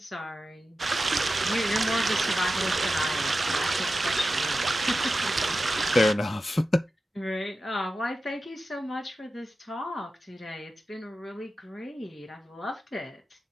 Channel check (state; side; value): normal; both; correlation 0.92